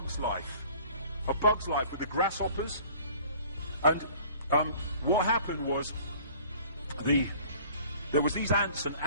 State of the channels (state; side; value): inverted; both; correlation -0.50